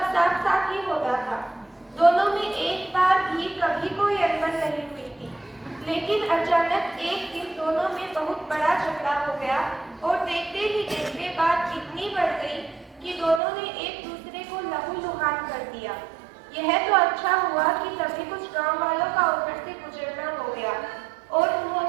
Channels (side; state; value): left; drops out; at 13.4 s